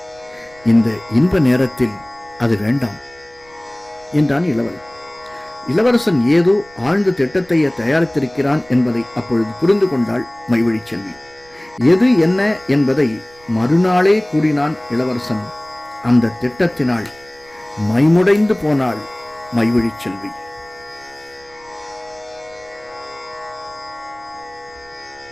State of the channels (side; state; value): right; noise; rumble, 27 dB below the sound